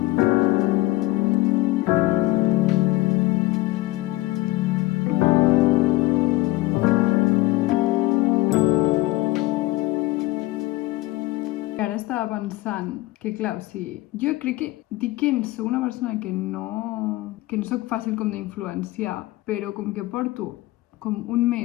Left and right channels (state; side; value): quieter; right; 19.0 dB